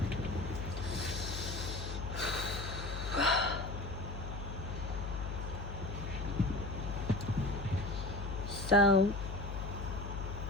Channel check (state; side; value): noise; left; hum, 5 dB below the sound